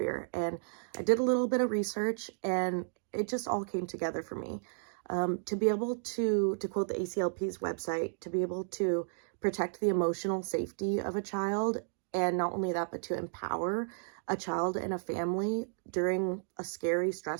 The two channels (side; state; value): left; silent; digital silence